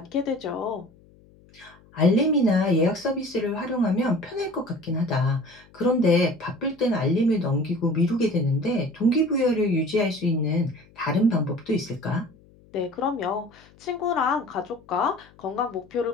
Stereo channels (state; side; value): noise; left; hum, 27 dB below the sound